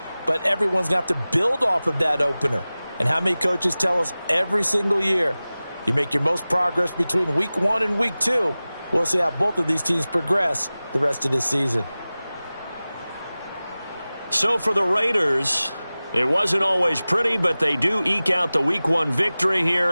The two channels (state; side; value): inverted; both; correlation -0.97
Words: But everyone's going to have to build off of that opener. And how many coaches tell us every single year, you make your most progress between Week 1 and Week 2. We'll see how both of these teams progress the rest of this season. So for the Raiders, it wasn't always pretty, but they do eke out the Week 1 victory